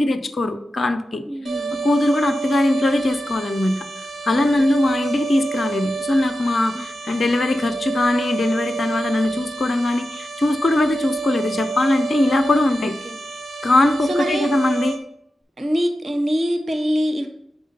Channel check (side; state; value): both; normal; correlation 0.91